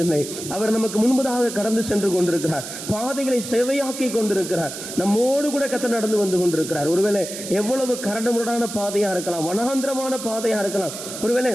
அவர் நமக்கு முன்பதாக கடந்து சென்று கொண்டிருக்கிறார், பாதைகளை செவையாக்கி கொண்டிருக்கிறார். நம்மோடு கூட கர்த்தர் நடந்து வந்து கொண்டிருக்கிறார். ஒருவேளை எவ்வளவு கரடுமுரடான பாதையா இருக்கலாம், வனாந்திரமான பாதையா இருக்கலாம், ஒருவேளை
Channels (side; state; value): right; noise; hiss, 9 dB below the sound